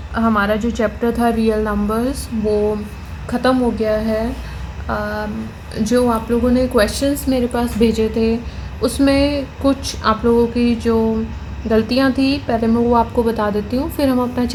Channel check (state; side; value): identical; both; correlation 1.00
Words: हमारा जो chapter था रियल नंबर्स वो ख़त्म हो गया है। जो आप लोगों ने क्वेश्चंस मेरे पास भेजे थे उसमें कुछ आप लोगों की जो गलतियां थी पहले मैं वो आपको बता देती हूँ, फिर हम अपना